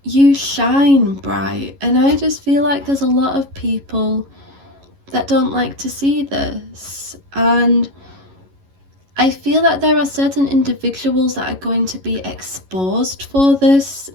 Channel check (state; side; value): late; left; 11 ms